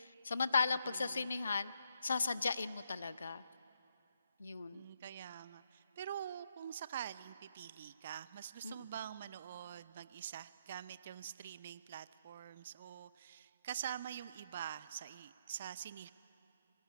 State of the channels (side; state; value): both; inverted; correlation -0.78